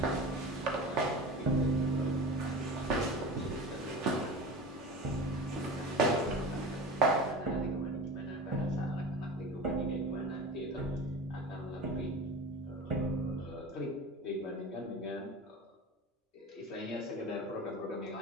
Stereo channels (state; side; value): normal; both; correlation 0.32